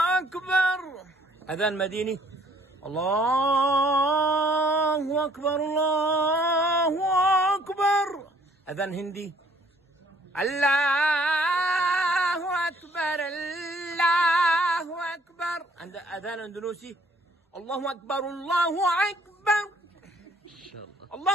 أكبر. أذان مديني. الله أكبر الله أكبر. أذان هندي. الله أكبر الله أكبر. عند أذان أندونيسي. الله أكبر الله أكبر. إن شاء الله.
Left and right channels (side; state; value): both; normal; correlation 0.61